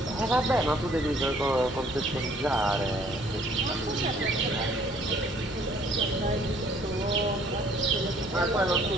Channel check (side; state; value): both; normal; correlation 0.60